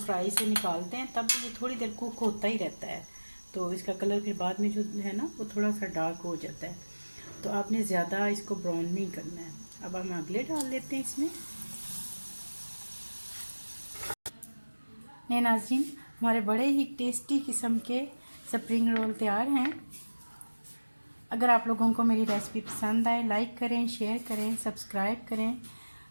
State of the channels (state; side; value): inverted; both; correlation -1.00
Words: से निकालते हैं तब ये थोड़ी देर कुक होता ही रहता है, तो इसका कलर फिर बाद में जो है ना वो थोड़ा सा डार्क हो जाता है। तो आपने ज़्यादा इसको ब्राउन नहीं करना है। अब हम अगले डाल लेते हैं इसमें। ये नाज़रीन, हमारे बड़े ही टेस्टी किस्म के स्प्रिंग रोल तैयार हैं। अगर आप लोगों को मेरी रेसिपी पसंद आए, लाइक करें, शेयर करें, सब्सक्राइब करें।